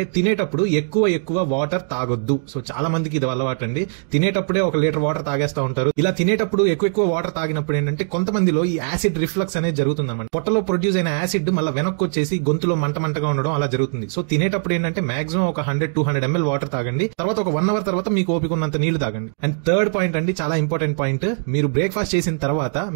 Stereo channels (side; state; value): left; silent; digital silence